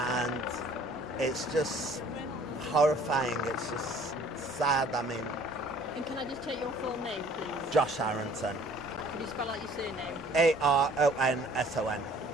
it's just horrifying. It's just sad. I mean, and can I just take your full name, please? Josh Aronson. Can you spell out your surname? Aronson.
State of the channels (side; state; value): both; normal; correlation 0.54